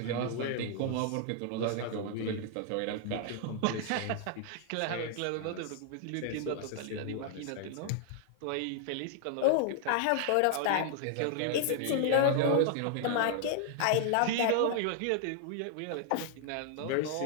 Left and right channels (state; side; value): different; both; correlation 0.00